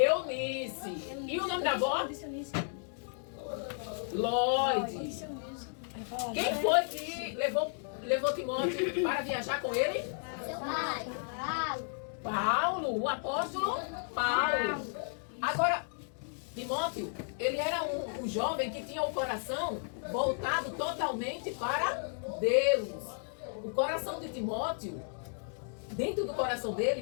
E o nome da avó? Lloyd. Quem foi que levou Timóteo para viajar com ele? Paulo, o apóstolo Paulo. Agora, Timóteo, ele era um jovem que tinha o coração voltado totalmente para Deus. O coração de Timóteo, dentro do coração dele,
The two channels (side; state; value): right; silent; 55 dB below the other